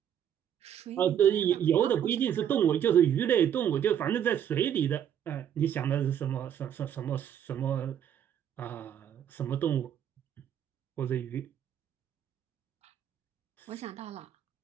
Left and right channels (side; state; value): left; quieter; 9.5 dB